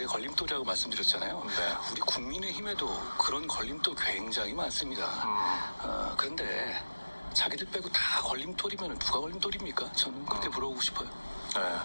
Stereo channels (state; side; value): inverted; both; correlation -1.00